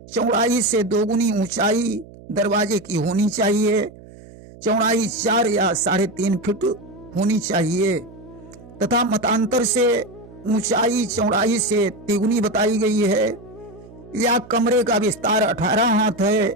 चौड़ाई से 2 गुनी ऊंचाई दरवाजे की होनी चाहिए। चौड़ाई 4 या 3.5 फीट होनी चाहिए तथा मतांतर से ऊंचाई चौड़ाई से 3 गुनी बताई गई है। या कमरे का विस्तार 18 हाथ है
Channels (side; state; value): right; noise; hum, 20 dB below the sound